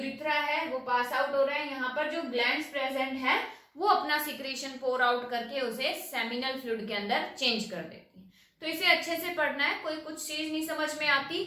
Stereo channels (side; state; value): both; identical; correlation 1.00